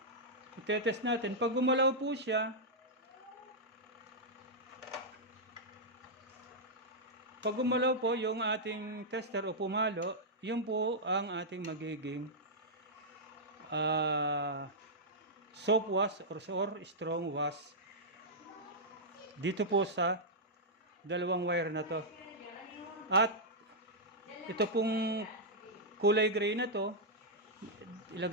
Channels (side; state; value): both; normal; correlation -0.08